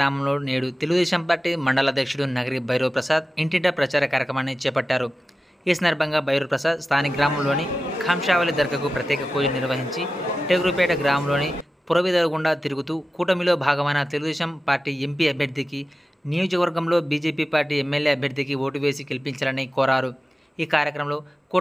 నేడు తెలుగుదేశం పార్టీ మండల అధ్యక్షుడు నగరి భైరవ్ ప్రసాద్ ఇంటింటా ప్రచార కార్యక్రమాన్ని చేపట్టారు. ఈ సందర్భంగా భైరవ్ ప్రసాద్ స్థానిక గ్రామంలోని ఖంషావళి దర్గాకు ప్రత్యేక పూజలు నిర్వహించి టేకురుపేట గ్రామంలోని పురవీధుల గుండా తిరుగుతూ కూటమిలో భాగమైన తెలుగుదేశం పార్టీ ఎంపీ అభ్యర్థికి, నియోజకవర్గంలో బీజేపీ పార్టీ ఎమ్మెల్యే అభ్యర్థికి ఓటు వేసి గెలిపించాలని కోరారు. ఈ కార్యక్రమంలో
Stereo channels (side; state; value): both; normal; correlation 0.94